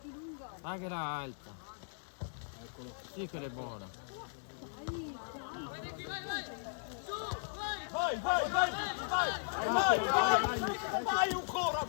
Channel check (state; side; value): silent; right; 53 dB below the other